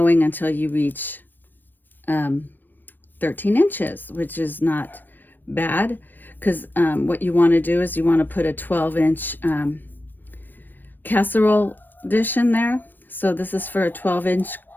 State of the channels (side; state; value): right; late; 0.092 ms